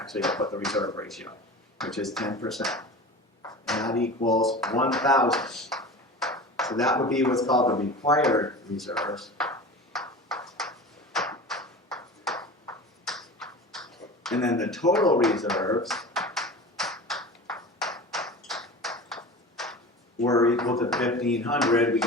I'll put the reserve ratio, which is 10%. And that equals 1,000. So that would be what's called the required reserves. And then the total reserves were equal to 1,500. We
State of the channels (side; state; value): both; normal; correlation 0.34